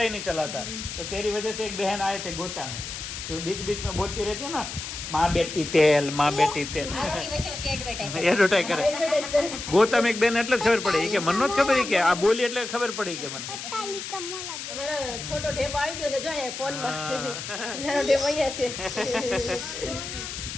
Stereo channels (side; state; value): left; noise; hiss, 8 dB below the sound